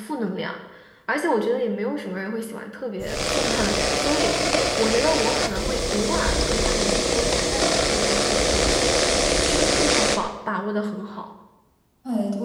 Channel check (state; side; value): identical; both; correlation 1.00